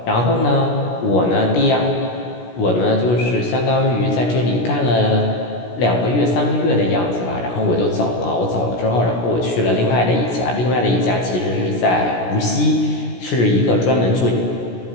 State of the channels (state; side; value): late; right; 17 ms